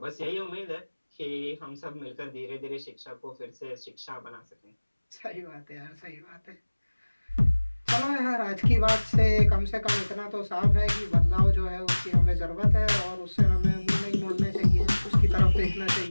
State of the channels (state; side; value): inverted; both; correlation -1.00